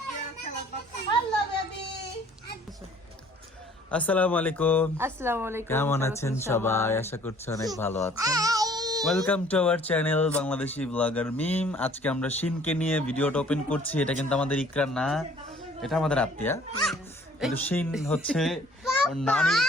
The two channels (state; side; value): normal; both; correlation 0.56